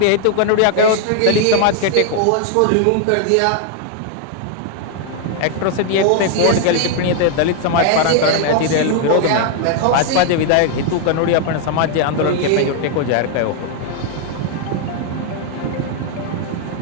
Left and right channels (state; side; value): different; both; correlation 0.00